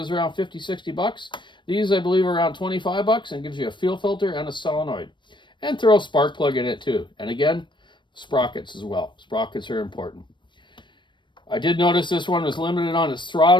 around 50-60 bucks. These I believe are around 25 bucks, and gives you a fuel filter and a solenoid. And throw a spark plug in it too. And again, sprockets as well. Sprockets are important. I did notice this one was limited on its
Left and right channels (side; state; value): right; late; 0.22 ms